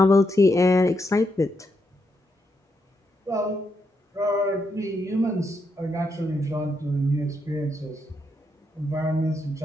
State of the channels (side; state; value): both; normal; correlation 0.80